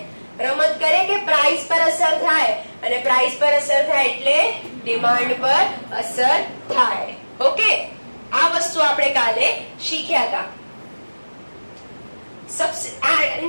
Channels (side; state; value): both; inverted; correlation -1.00